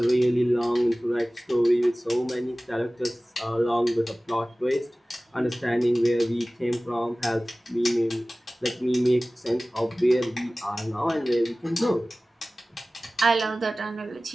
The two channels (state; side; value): normal; both; correlation 0.98